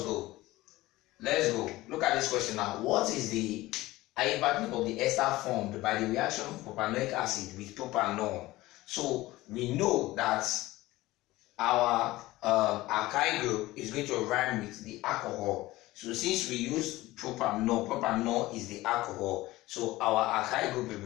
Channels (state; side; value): quieter; right; 18.3 dB